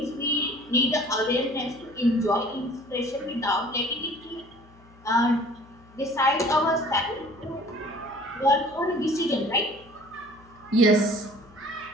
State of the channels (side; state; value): left; noise; hum, 25 dB below the sound